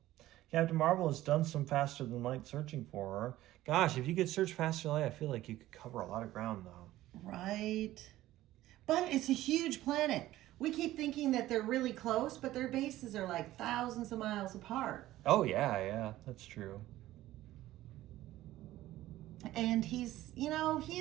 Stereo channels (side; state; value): left; quieter; 15.3 dB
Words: Captain Marvel has done some faster than light searching for her. Gosh, if you could search faster than light, I feel like you could cover a lot of ground, though. Right. But it's a huge planet. We keep thinking that they're really close, but their bases are like thousands of miles apart. Oh, yeah, that's true. And he's